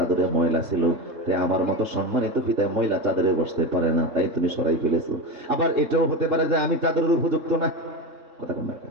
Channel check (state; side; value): late; left; 3.7 ms